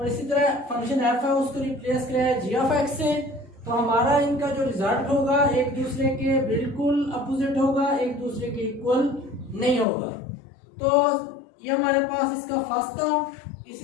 इसी तरह फंक्शन एफ है उसको रिप्लेस कराया जी ऑफ एक्स से, तो हमारा इनका जो रिजल्ट होगा एक दूसरे के बिल्कुल अपोजिट होगा, एक दूसरे के इक्वल नहीं होगा। तो ये हमारे पास इसका फर्स्ट था।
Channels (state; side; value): drops out; right; at 9.9 s